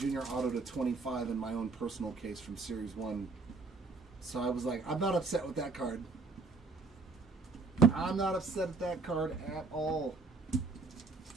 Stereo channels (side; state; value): left; quieter; 3.9 dB